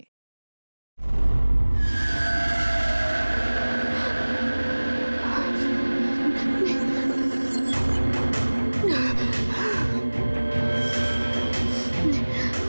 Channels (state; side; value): inverted; both; correlation -1.00